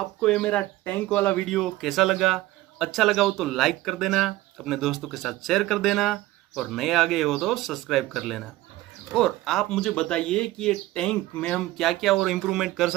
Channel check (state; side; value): quieter; left; 17.2 dB